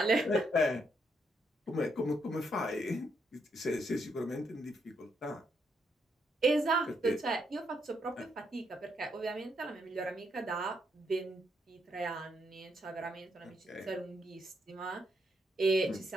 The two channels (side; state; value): both; normal; correlation 0.77